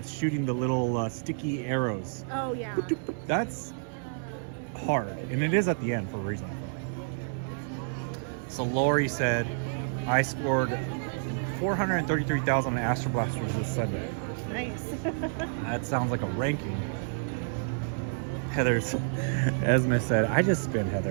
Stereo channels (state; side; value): silent; left; digital silence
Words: shooting the little sticky arrows. Oh yeah. That's hard, and it is at the end for a reason. So Lori said, I scored 433,000 on Astro Blasters this Sunday. Nice. That sounds like a ranking. Esme said, I just spin,